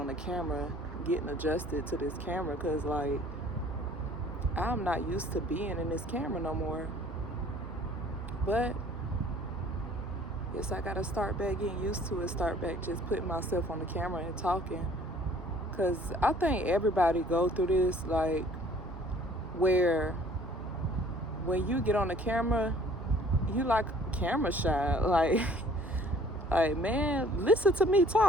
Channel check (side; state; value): both; normal; correlation 0.54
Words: the camera, getting adjusted to this camera because like I'm not used to being in this camera no more. But yes, I gotta start back getting used to it, start back just putting myself on the camera and talking. Cause I think everybody go through this, like where when you get on the camera, you like camera shy. Like man, listen to me